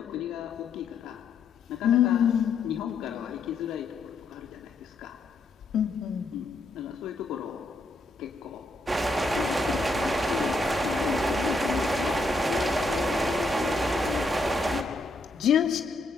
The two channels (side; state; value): right; quieter; 3.1 dB